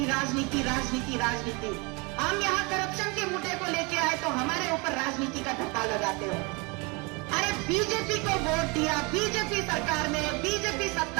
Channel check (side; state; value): left; quieter; 28.8 dB